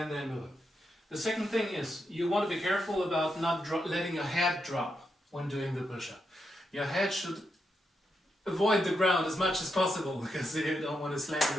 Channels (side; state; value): both; normal; correlation 0.84